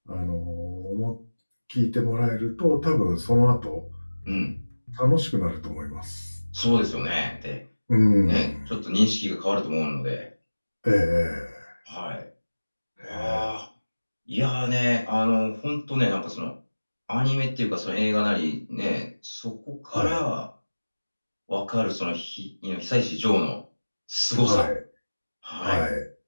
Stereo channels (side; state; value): both; inverted; correlation -1.00